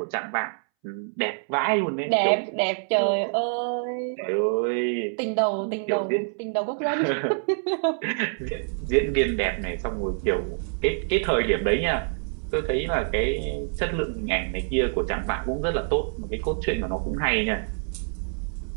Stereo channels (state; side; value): silent; left; 61 dB below the other